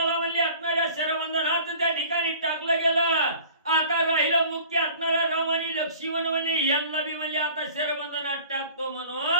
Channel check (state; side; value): inverted; both; correlation -0.46